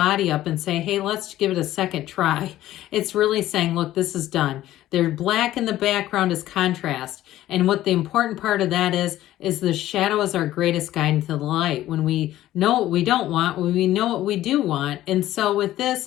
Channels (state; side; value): quieter; right; 14.2 dB